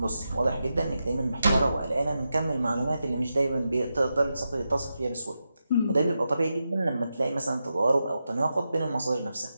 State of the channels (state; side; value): inverted; both; correlation -0.89